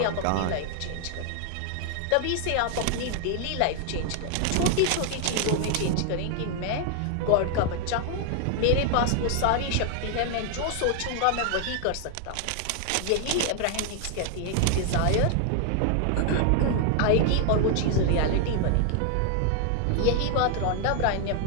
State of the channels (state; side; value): different; both; correlation 0.00